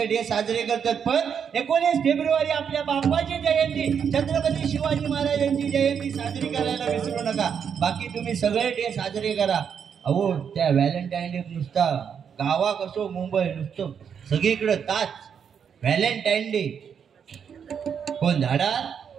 डे साजरे करतात. पण 19 फेब्रुवारी आपल्या बाप्पाची जयंती, छत्रपती शिवाजी महाराजांची जयंती साजरी करायला विसरू नका. बाकी तुम्ही सगळे डे साजरे करा. अहो त्या व्हॅलेंटाईन डे नुसता गावाक असो मुंबई नुसतं सगळीकडे ताच व्हॅलेंटाईन डे. कोण झाडा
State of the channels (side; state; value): left; quieter; 7.4 dB